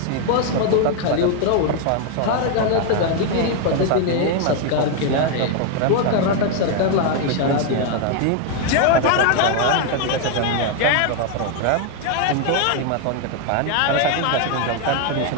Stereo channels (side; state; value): both; different; correlation 0.01